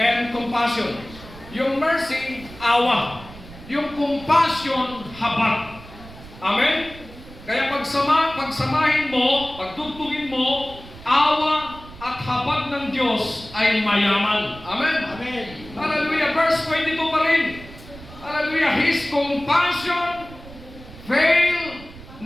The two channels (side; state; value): right; noise; rumble, 17 dB below the sound